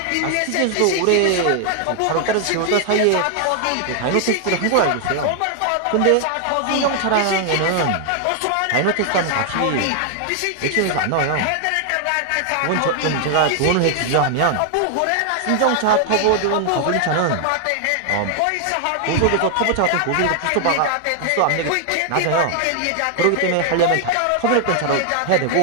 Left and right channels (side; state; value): both; different; correlation 0.00